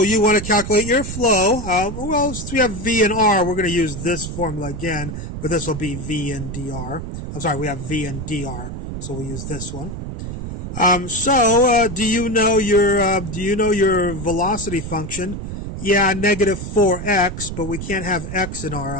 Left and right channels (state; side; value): noise; right; rumble, 7 dB below the sound